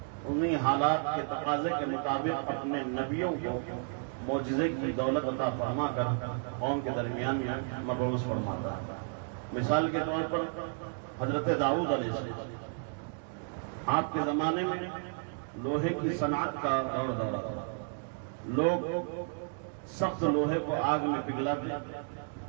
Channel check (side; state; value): left; silent; 56 dB below the other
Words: انہی حالات کے تقاضے کے مطابق اپنے نبیوں کو معجزے کی دولت عطا فرما کر قوم کے درمیان میں مبعوث فرماتا ہے۔ مثال کے طور پر حضرت داؤد علیہ السلام، آپ کے زمانے میں لوہے کی صنعت کا دور دورہ تھا. لوگ سخت لوہے کو آگ میں پگھلاتے،